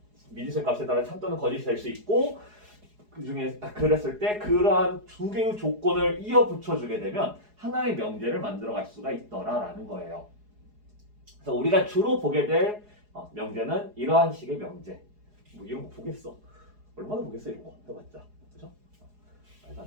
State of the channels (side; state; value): left; late; 4.8 ms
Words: 미지수의 값에 따라 참 또는 거짓이 될 수 있고 그 중에 그랬을 때 그러한 두 개의 조건을 이어 붙여주게 되면 하나의 명제를 만들어갈 수가 있더라라는 거예요. 그래서 우리가 주로 보게 될 명제는 이러한 식의 명제. 뭐 이런 거 보겠어? 얼마나 보겠어 이런 거 해봤자, 그죠? 말도